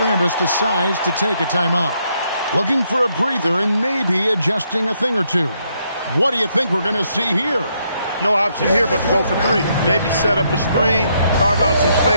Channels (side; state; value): both; inverted; correlation -0.75